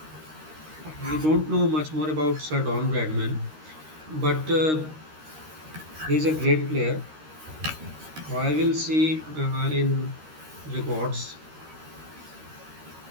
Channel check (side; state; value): left; late; 13 ms